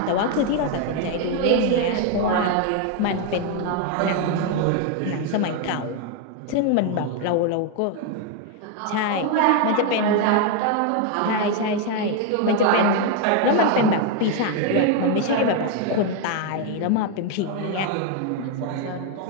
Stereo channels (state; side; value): different; both; correlation 0.01